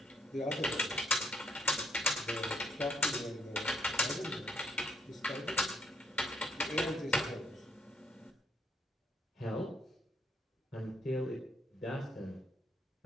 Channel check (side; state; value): both; normal; correlation 0.69